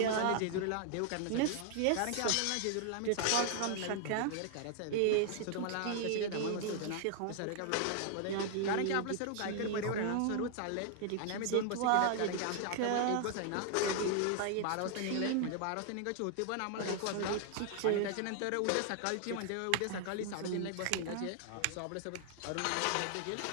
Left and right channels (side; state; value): both; different; correlation 0.00